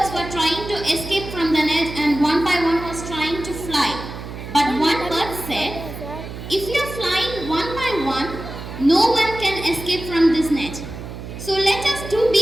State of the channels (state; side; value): noise; right; hum, 10 dB below the sound